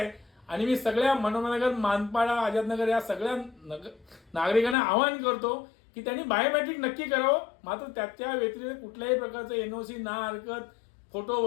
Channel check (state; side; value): drops out; right; at 4.8 s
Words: आणि मी सगळ्या मनोहरनगर, मानपाडा, आझादनगर या सगळ्या नागरिकांना आवाहन करतो की त्यांनी बायोमेट्रिक नक्की करावं. मात्र त्याच्या व्यतिरिक्त कुठल्याही प्रकारचं NOC, ना हरकत, फोटो